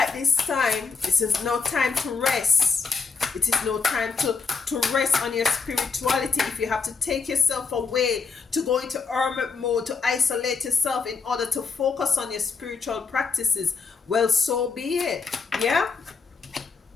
this time. This is no time to rest. It is no time to rest on your spirituality. If you have to take yourself away, to go into hermit mode, to isolate yourself in order to focus on your spiritual practices, well, so be it. Yeah,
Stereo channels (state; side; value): quieter; right; 5.0 dB